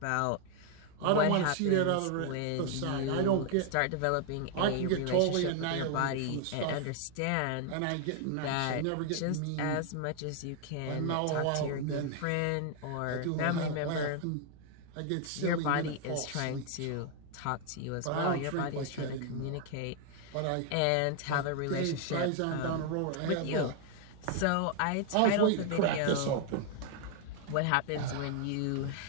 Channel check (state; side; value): different; both; correlation 0.00